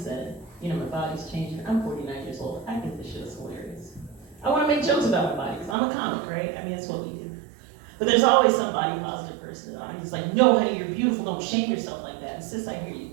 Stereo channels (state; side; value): drops out; left; at 5.8 s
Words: my body's changing. I'm 49 years old. I think this shit is hilarious. I want to make jokes about my body because I'm a comic, right? I mean, that's what we do. But there's always some body positive person that I'm just like, no, honey, you're beautiful. Don't shame yourself like that. And sis, I hear you.